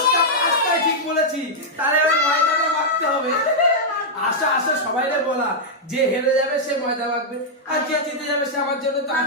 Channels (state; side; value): normal; both; correlation -0.06